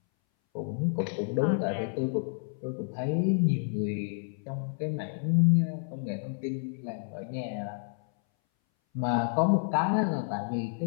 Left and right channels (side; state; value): right; silent; 58 dB below the other